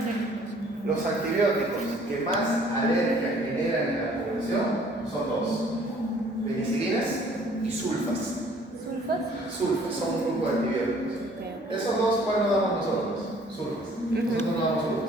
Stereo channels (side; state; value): both; normal; correlation 0.57